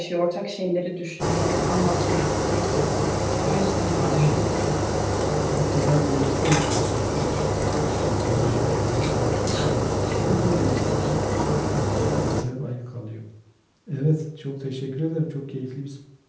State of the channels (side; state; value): both; identical; correlation 1.00